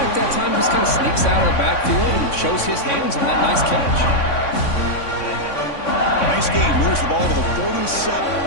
that time just kind of sneaks out of the backfield and shows his hands on that nice catch. Nice game. Moves the ball to the 47.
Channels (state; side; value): late; right; 3.6 ms